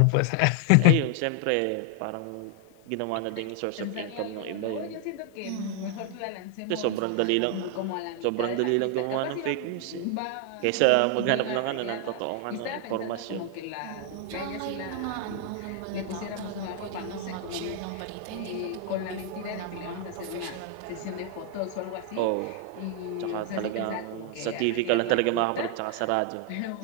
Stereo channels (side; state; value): both; different; correlation 0.00